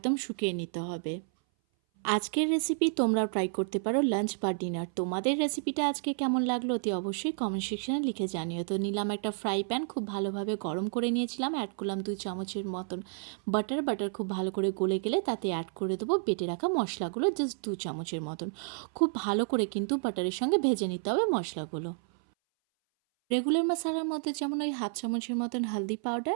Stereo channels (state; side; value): silent; left; 57 dB below the other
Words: শুকিয়ে নিতে হবে। আজকের রেসিপি তোমরাও ট্রাই করতে পারো লাঞ্চ বা ডিনার। তোমাদের রেসিপিটা আজকে কেমন লাগলো অতি অবশ্যই কমেন্ট সেকশনে লিখে জানিও। তো নিলাম একটা ফ্রাই প্যান, খুব ভালোভাবে গরম করে নিয়েছিলাম। অ্যাড করলাম 2 চামচের মতন বাটার খুব ভালো করে গলে গেলে তাতে অ্যাড করে দেবো বেটে রাখা মশলাগুলো, জাস্ট 2 চামচের মতন। খুব ভালো করে কিন্তু বাটারের সঙ্গে ভেজে নিতে হবে মশলাগুলো। রেগুলার মশলার মধ্যে যেমন ওই হাফ চামচের মতন হলদি